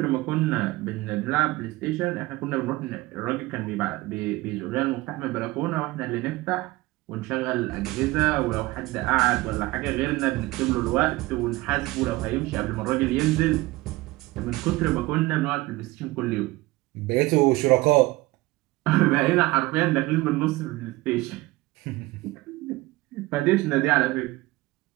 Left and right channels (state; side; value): quieter; left; 20.0 dB